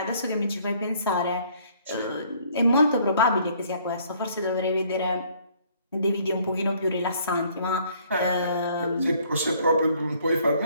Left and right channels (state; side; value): inverted; both; correlation -0.61